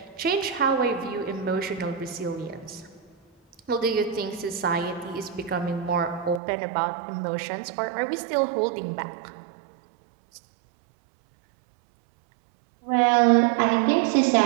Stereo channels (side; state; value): left; drops out; at 6.4 s